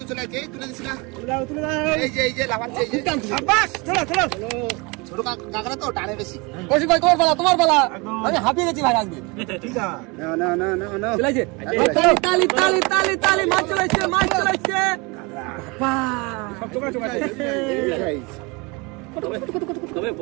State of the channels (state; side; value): quieter; left; 27.4 dB